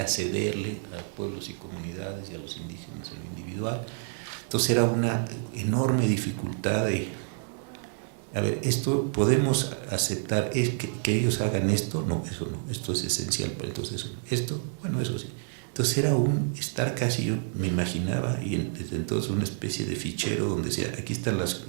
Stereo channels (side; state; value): left; silent; 59 dB below the other